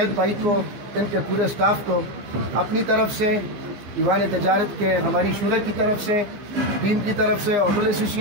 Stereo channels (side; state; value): left; late; 15 ms